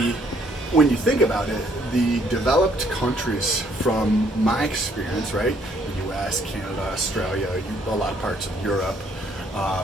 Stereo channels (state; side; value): normal; both; correlation 0.66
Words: when you think about it, the developed countries, from my experience, right, the US, Canada, Australia, a lot of parts of Europe,